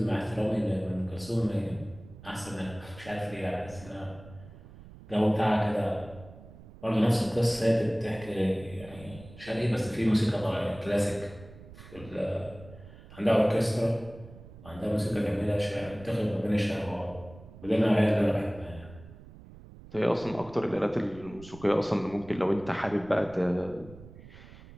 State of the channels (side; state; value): right; noise; rumble, 18 dB below the sound